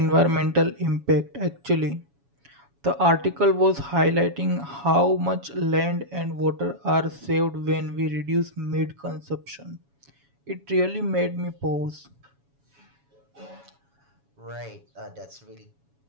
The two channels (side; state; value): left; late; 7.1 ms